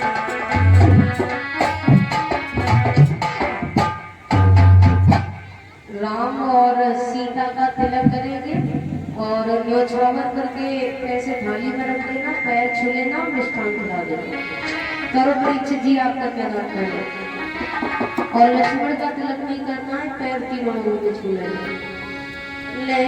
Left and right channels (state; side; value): identical; both; correlation 1.00